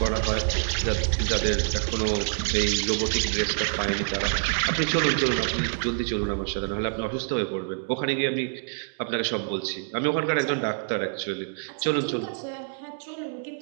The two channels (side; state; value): left; silent; digital silence